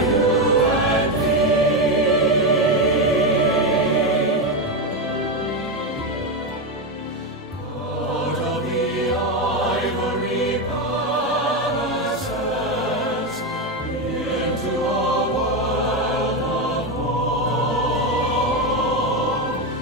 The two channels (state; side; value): normal; both; correlation 0.11